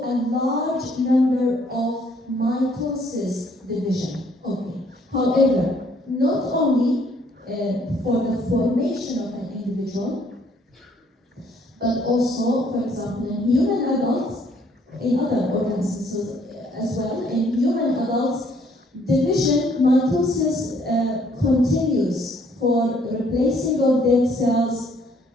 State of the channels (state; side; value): normal; both; correlation 0.64